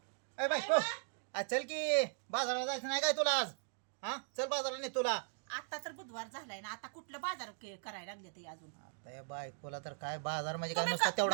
ए बायको, आज चल की बाजाराला जायचं नाही काय तुला आज? हा, चल बाजाराला नाही तुला. आता तर बुधवार झालाय ना, आता कुठलं बाजार करायला लागले ते अजून. आता या बायकोला तर काय बाजार म्हणजे काय तुम्ही नुसता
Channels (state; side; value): silent; left; digital silence